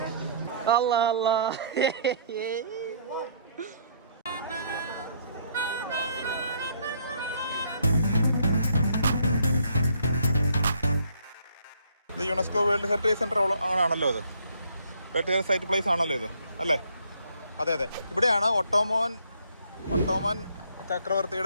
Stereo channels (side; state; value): both; inverted; correlation -0.64